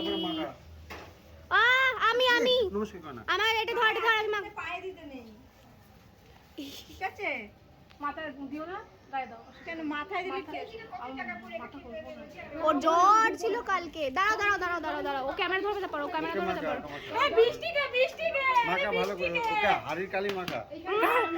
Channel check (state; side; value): identical; both; correlation 1.00